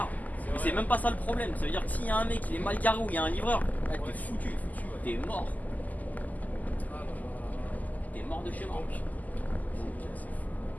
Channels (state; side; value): late; right; 0.080 ms